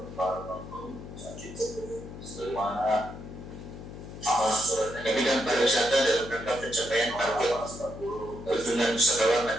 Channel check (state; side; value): noise; left; hum, 12 dB below the sound